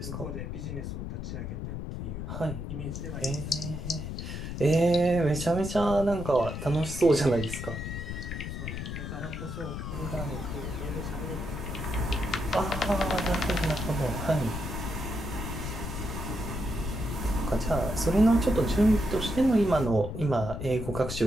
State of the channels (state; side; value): noise; left; rumble, 6 dB below the sound